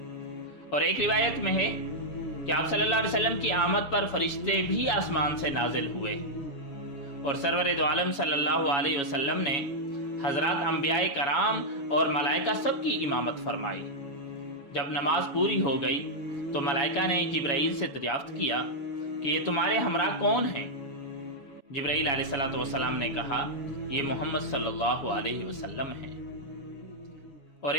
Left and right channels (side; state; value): right; late; 7.2 ms